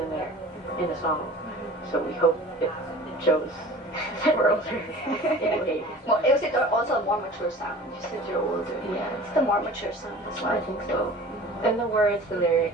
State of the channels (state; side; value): normal; both; correlation 0.42